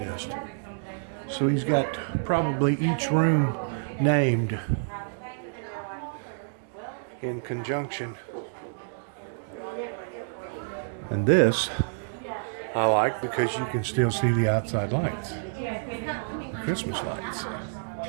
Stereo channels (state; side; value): silent; left; digital silence